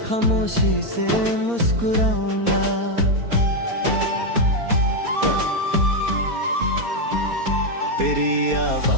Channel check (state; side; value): late; left; 4.2 ms